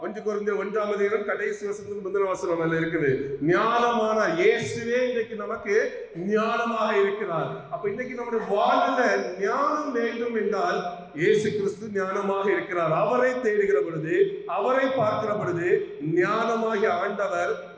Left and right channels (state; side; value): identical; both; correlation 1.00